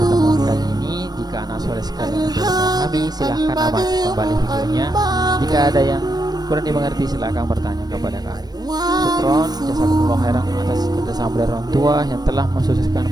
kali ini. Jika anak soleh sekalian belum memahami, silahkan amati kembali videonya. Jika ada yang kurang dimengerti, silakan bertanya kepada kami. Syukron, jazakumullah khairan atas kerjasama dari orang tua yang telah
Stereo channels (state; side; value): late; left; 0.19 ms